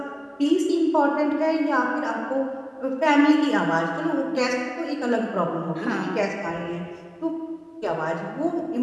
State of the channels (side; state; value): both; identical; correlation 1.00